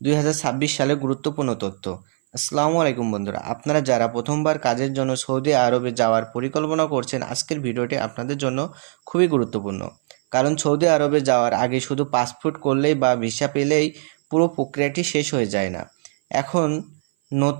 2026 সালে গুরুত্বপূর্ণ তথ্য। আসসালামু আলাইকুম বন্ধুরা, আপনারা যারা প্রথমবার কাজের জন্য সৌদি আরবে যাওয়ার পরিকল্পনা করছেন, আজকের ভিডিওটি আপনাদের জন্য খুবই গুরুত্বপূর্ণ। কারণ সৌদি আরবে যাওয়ার আগে শুধু পাসপোর্ট করলেই বা ভিসা পেলেই পুরো প্রক্রিয়াটি শেষ হয়ে যায় না। এখন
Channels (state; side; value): silent; left; 57 dB below the other